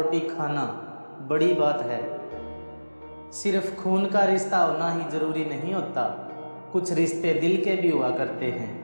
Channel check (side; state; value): both; inverted; correlation -1.00